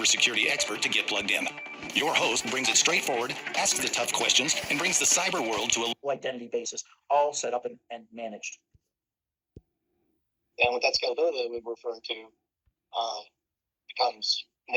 expert to get plugged in. Your host brings it straightforward, asks the tough questions, and brings the cyber world to a identity basis, all set up and managed. And with that scalability that we were referring to, becomes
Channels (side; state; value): both; identical; correlation 1.00